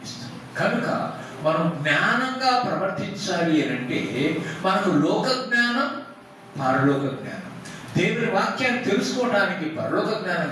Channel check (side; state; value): both; identical; correlation 1.00